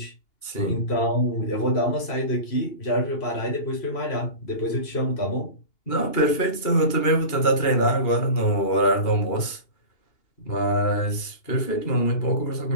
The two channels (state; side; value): late; right; 2.8 ms